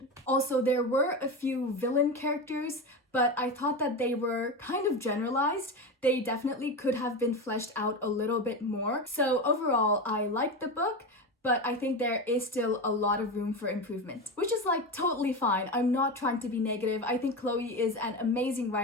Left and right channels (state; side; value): normal; both; correlation 0.20